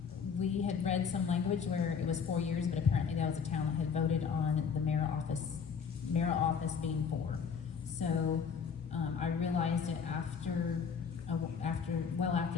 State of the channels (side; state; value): right; quieter; 6.3 dB